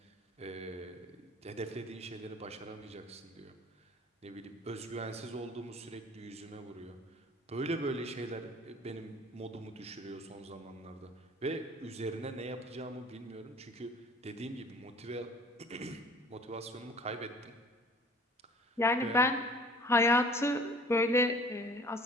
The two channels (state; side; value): normal; both; correlation 0.49